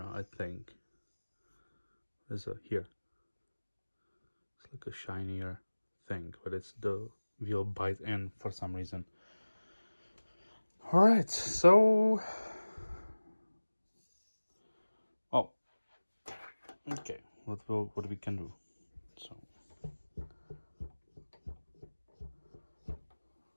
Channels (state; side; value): inverted; both; correlation -1.00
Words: I think. There's a here. It's like a shinier thing, but it's the will bite in for some reason. All right, so okay, what we can do. So